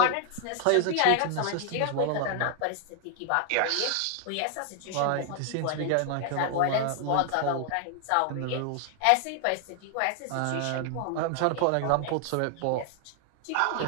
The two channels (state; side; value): different; both; correlation 0.00